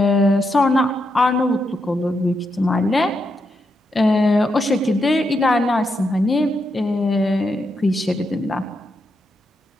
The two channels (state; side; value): normal; both; correlation 0.82